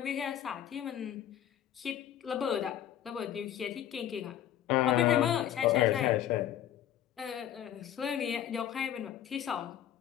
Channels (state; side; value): quieter; right; 10.9 dB